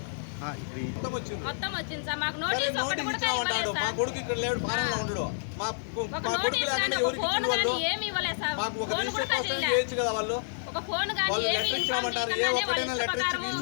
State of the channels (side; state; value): right; silent; digital silence